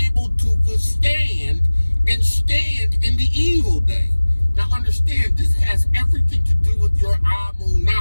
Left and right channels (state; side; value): inverted; both; correlation -1.00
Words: able to withstand and stand in the evil day. Now understand, this has everything to do with your